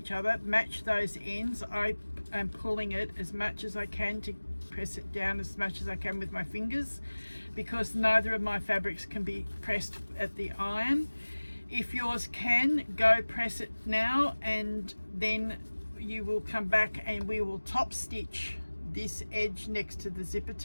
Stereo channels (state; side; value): inverted; both; correlation -1.00